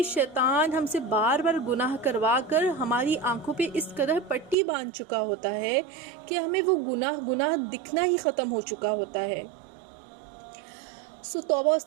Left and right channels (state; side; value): drops out; left; at 4.5 s